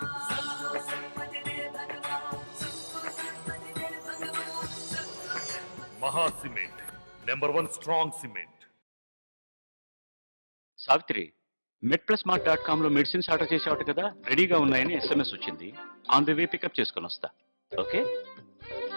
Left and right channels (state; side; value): inverted; both; correlation -1.00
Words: सबको सम्मति दे भगवान, सबको सम्मति दे भगवान, सबको सम्मति। మహా cement #1 strong cement. Savitri, medplusmart.com లో మెడిసిన్స్ ఆర్డర్ చేసేవాట కదా, రెడీగా ఉన్నాయని SMS వచ్చింది. ఆన్ ది వే పికప్ చేసుకొని వస్తా. ఓకే,